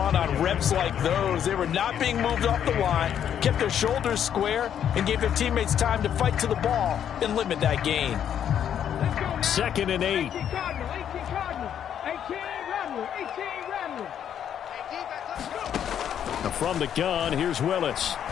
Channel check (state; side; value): quieter; right; 9.3 dB